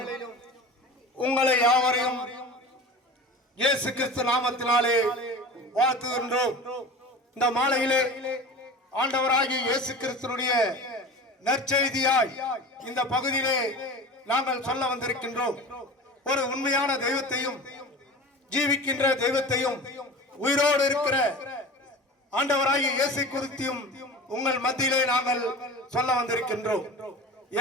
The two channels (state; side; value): normal; both; correlation 0.35